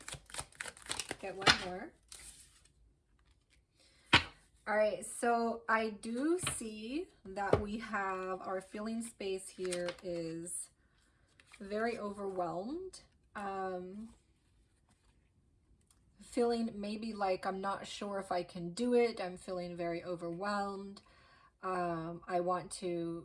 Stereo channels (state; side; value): identical; both; correlation 1.00